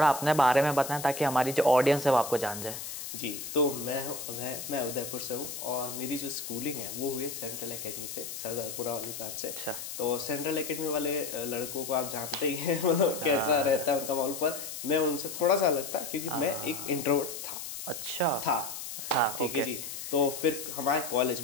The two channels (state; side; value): noise; left; hiss, 8 dB below the sound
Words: अपने बारे में बताएं ताकि हमारी जो ऑडियंस है वो आपको जान जाए। जी, तो मैं उदयपुर से हूँ और मेरी जो स्कूलिंग है वो हुई सेंट्रल एकेडमी से, सरदारपुरा वाली ब्रांच से। अच्छा। तो सेंट्रल एकेडमी वाले लड़कों को आप जानते ही हैं, मतलब कैसा रहता है उनका माहौल। पर मैं उनसे थोड़ा सा अलग था क्योंकि मैं एक इंट्रोवर्ट था। अच्छा था ठीक है जी। तो फिर हमारे